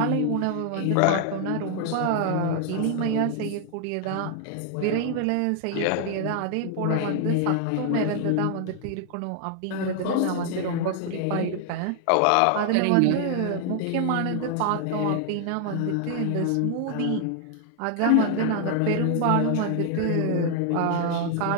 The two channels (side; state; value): both; different; correlation 0.00